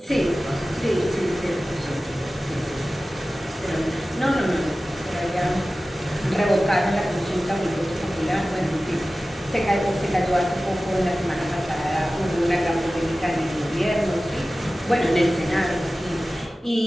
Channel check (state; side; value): normal; both; correlation 0.96